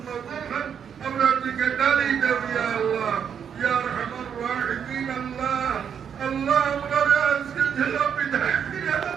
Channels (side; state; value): left; quieter; 7.8 dB